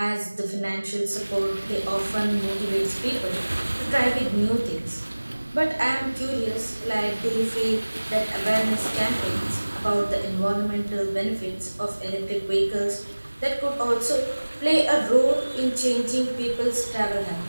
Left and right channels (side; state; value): both; inverted; correlation -1.00